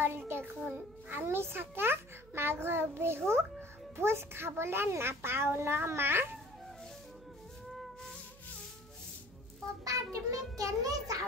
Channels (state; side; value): noise; right; hum, 23 dB below the sound